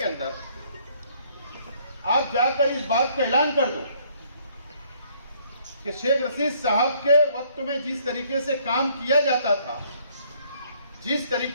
अंदर आप जाकर इस बात का ऐलान कर दो कि शेख रशीद साहब के वक्त में जिस तरीके से काम किया जाता था, जिस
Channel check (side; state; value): both; inverted; correlation -0.64